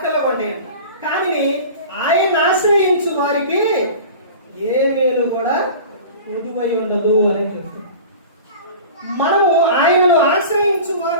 కొండేయండి. కానీ ఆయన ఆశ్రయించు వారికి ఏ మేలు కూడా కొదువై ఉండదు అని చెప్తుంది. మనము ఆయనను ఆశ్రయించు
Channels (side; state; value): both; inverted; correlation -0.38